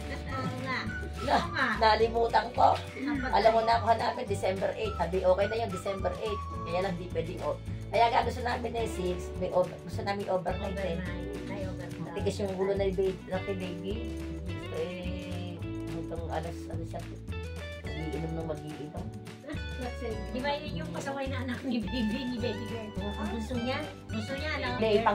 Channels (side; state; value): both; identical; correlation 1.00